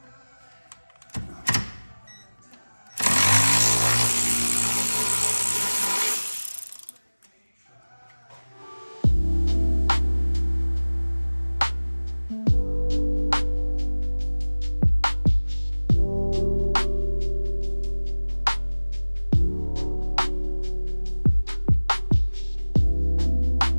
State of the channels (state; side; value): inverted; both; correlation -1.00